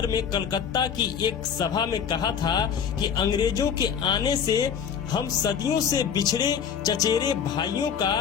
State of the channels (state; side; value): quieter; right; 7.6 dB